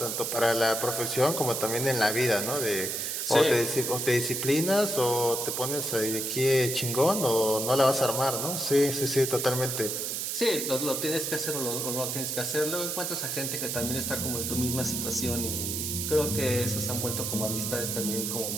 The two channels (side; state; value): right; noise; hiss, 2 dB below the sound